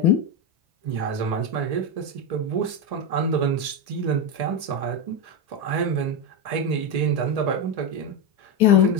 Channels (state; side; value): late; left; 1.8 ms